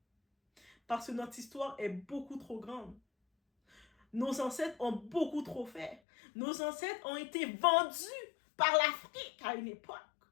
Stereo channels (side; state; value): right; drops out; at 6.0 s